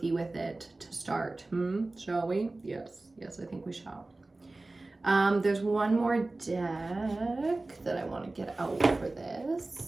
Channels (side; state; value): left; quieter; 3.0 dB